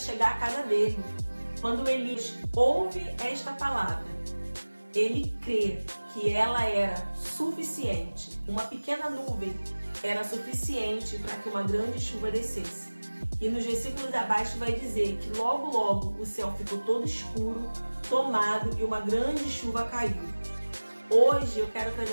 à casa dele. Quando Elias ouve esta palavra, ele crê que ela era suficiente. Uma pequena nuvem era suficiente para que uma grande chuva descesse. E nos versículos abaixo vai dizer que logo, logo o céu ficou todo escuro, tomado e uma grande chuva caiu. Hoje eu quero trazer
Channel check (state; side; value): inverted; both; correlation -1.00